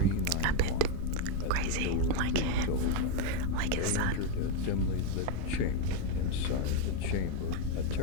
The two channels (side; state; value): both; different; correlation 0.03